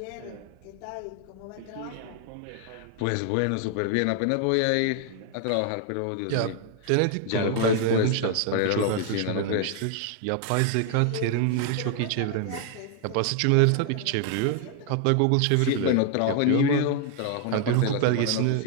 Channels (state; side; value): different; both; correlation 0.00